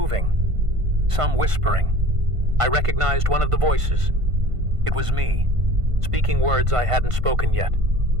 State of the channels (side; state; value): left; late; 1.5 ms